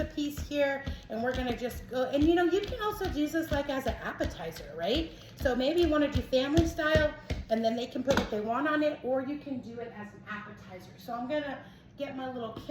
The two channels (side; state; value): both; identical; correlation 1.00